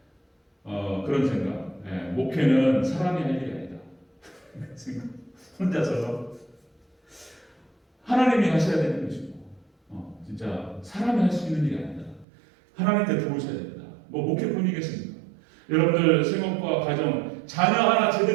그런 생각. 목회는 사람이 할 일이 아니다. 혼자서 하나님이 하셔야 되는 것이고 진짜 사람이 할 수 있는 일이 아니다. 하나님께 도우셔야 된다. 뭐 목회뿐이겠습니까? 여러분들 생업과 가정 자녀 하나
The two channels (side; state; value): left; drops out; at 12.2 s